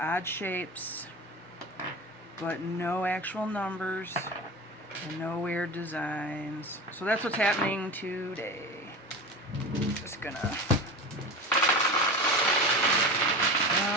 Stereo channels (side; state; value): both; normal; correlation 0.29